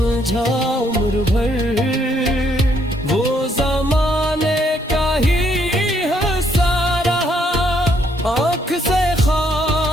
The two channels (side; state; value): both; normal; correlation 0.71